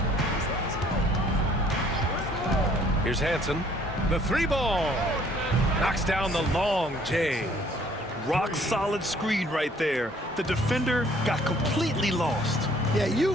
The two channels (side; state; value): both; normal; correlation 0.59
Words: Here's Hansen. The three ball. Knocks down the long J. Rock solid screen right there. The defender got completely lost. Yeah,